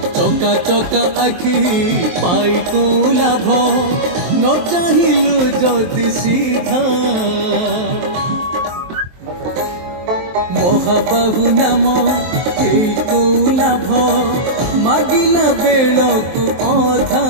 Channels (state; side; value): late; left; 23 ms